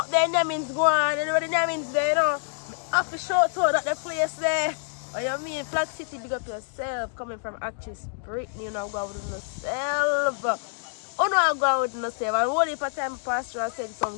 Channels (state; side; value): silent; right; digital silence